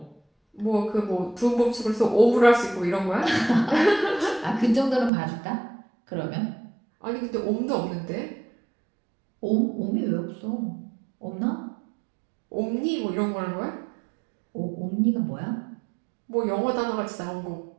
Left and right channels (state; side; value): drops out; left; at 5.1 s